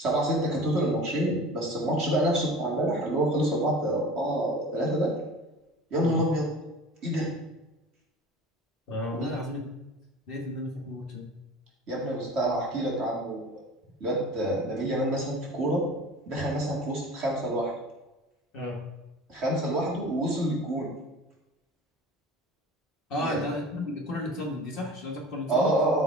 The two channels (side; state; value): both; normal; correlation 0.40